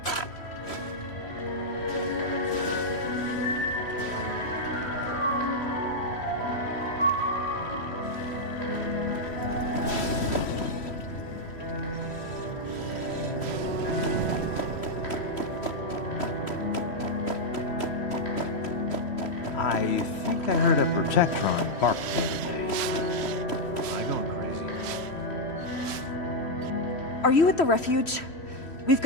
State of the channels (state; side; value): late; right; 3.1 ms